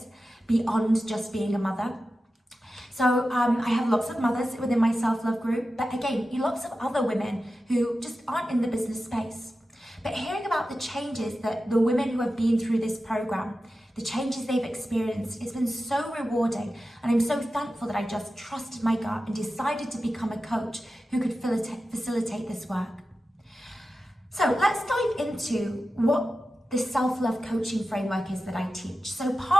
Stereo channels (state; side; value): normal; both; correlation 0.93